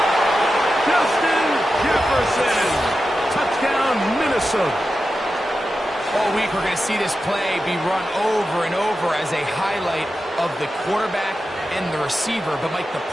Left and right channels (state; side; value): normal; both; correlation 0.91